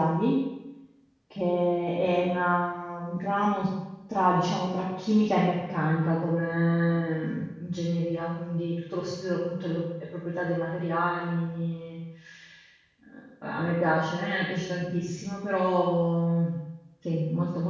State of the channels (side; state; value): both; identical; correlation 1.00